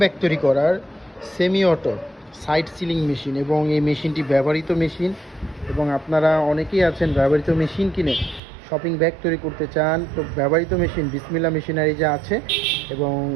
ব্যাগ তৈরি করার semi auto side sealing machine এবং এই মেশিনটি ব্যবহৃত মেশিন এবং আপনারা অনেকেই আছেন ব্যবহৃত মেশিন কিনে শপিং ব্যাগ তৈরি করতে চান। তো ব্যবহৃত মেশিন বিসমিল্লাহ মেশিনারিজে আছে এবং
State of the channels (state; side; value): drops out; left; at 8.4 s